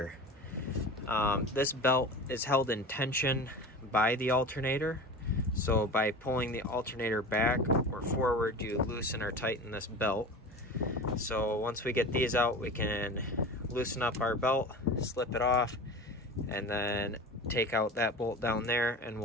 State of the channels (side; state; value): both; normal; correlation 0.33